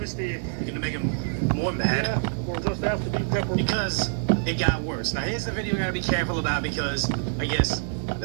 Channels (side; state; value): left; silent; 56 dB below the other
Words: You're gonna make them more mad. Yeah, or just have to be pepper. Because it got worse. Now here's the video you gotta be careful about, because I guess